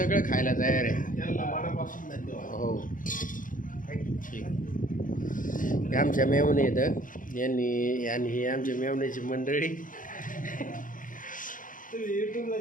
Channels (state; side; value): late; right; 0.39 ms